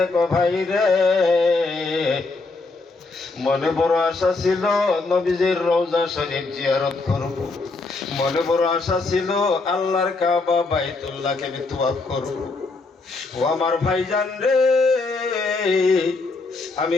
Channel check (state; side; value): quieter; right; 3.7 dB